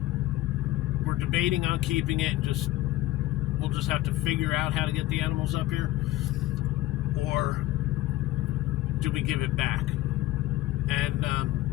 we're debating on keeping it and we'll just have to figure out how to get the animals up here, or do we give it back? And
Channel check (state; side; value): quieter; right; 16.2 dB